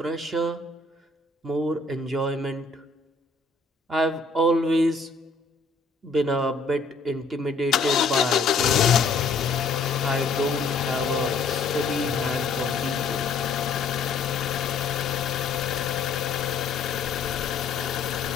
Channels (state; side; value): quieter; right; 4.0 dB